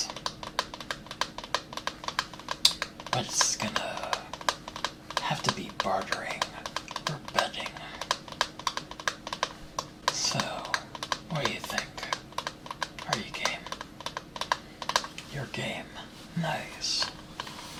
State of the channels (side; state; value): both; identical; correlation 1.00